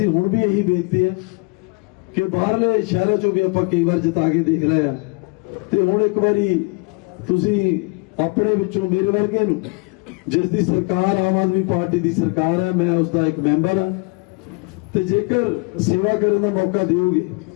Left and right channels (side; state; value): right; quieter; 29.5 dB